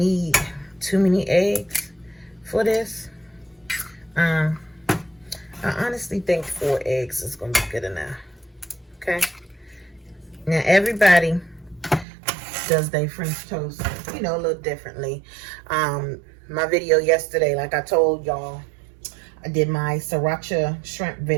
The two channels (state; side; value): drops out; left; at 12.1 s